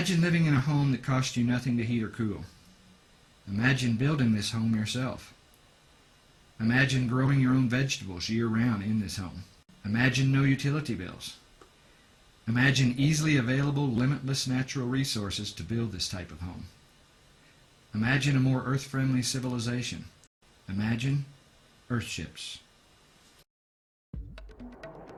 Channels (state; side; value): identical; both; correlation 1.00